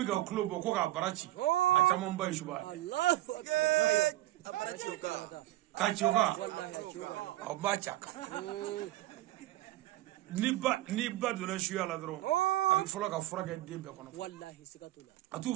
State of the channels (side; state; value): left; quieter; 16.3 dB